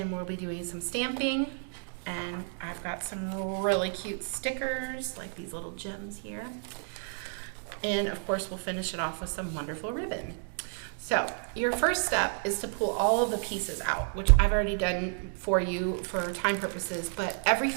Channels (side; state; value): left; silent; 57 dB below the other